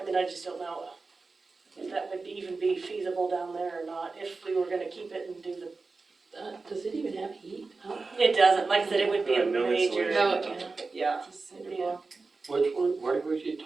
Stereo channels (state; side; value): quieter; left; 4.0 dB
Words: mean, I just don't know if that would even be feasible down there or not, if we were gonna keep it and do the, Does it even have heat? Huh? it doesn't, like I said, it would be a No major, insulation. yeah, It's a it'd cinder be a, block. Which one, where was you